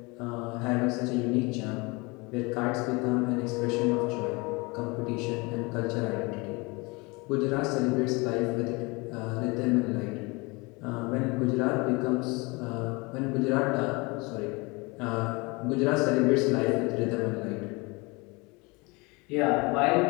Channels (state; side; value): quieter; right; 26.5 dB